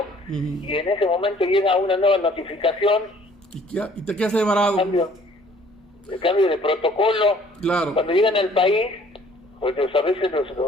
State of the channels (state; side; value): normal; both; correlation 0.56